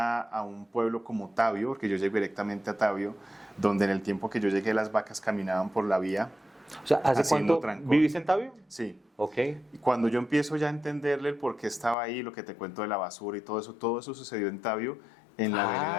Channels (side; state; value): right; drops out; at 12.0 s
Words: un pueblo como Tabio, porque yo llegué directamente a Tabio, donde en el tiempo que yo llegué las vacas caminaban por la vía. O sea, ¿hace cuánto vivís en Tabio? Sí. Ok. Y cuando yo empiezo ya a entenderle el por qué estaba ahí, lo que te cuento de la basura y todo eso sucedió en Tabio, en la